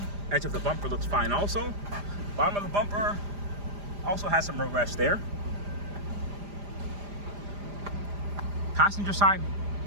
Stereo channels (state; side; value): late; left; 5.0 ms